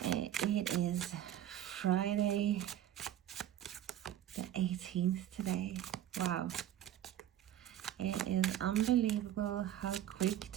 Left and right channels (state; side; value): quieter; left; 11.5 dB